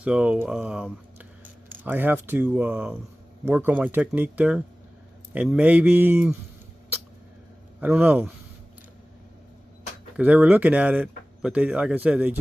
So I have to work on my technique there, and maybe, I don't know, because they were looking at it, but they, like I said, they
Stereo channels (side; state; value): both; normal; correlation 0.97